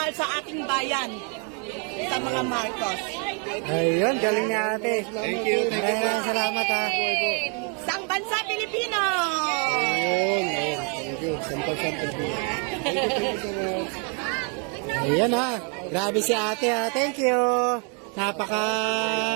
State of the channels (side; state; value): left; quieter; 38.1 dB